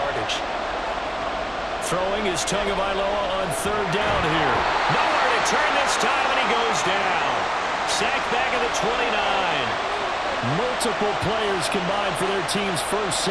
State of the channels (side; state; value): both; identical; correlation 1.00